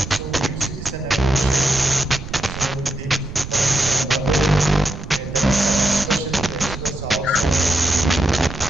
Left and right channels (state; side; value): noise; right; rumble, 10 dB below the sound